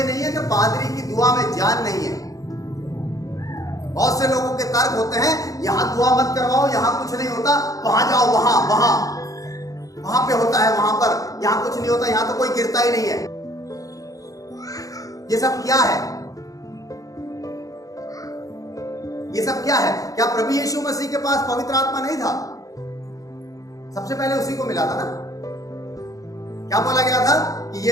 नहीं है कि पादरी की दुआ में जान नहीं है। बहुत से लोगों के तर्क होते हैं यहां दुआ मत करवाओ, यहां कुछ नहीं होता, वहां जाओ, वहां पे होता है, वहां पर, यहां कुछ नहीं होता, यहां तो कोई गिरता ही नहीं है। ये सब क्या है? ये सब क्या है? क्या प्रभु यीशु मसीह के पास पवित्र आत्मा नहीं था? सबसे पहले उसी को मिला था ना। क्या बोला गया था कि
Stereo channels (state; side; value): late; right; 0.17 ms